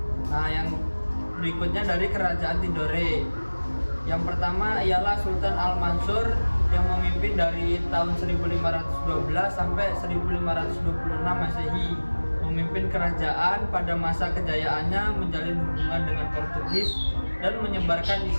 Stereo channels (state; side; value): inverted; both; correlation -1.00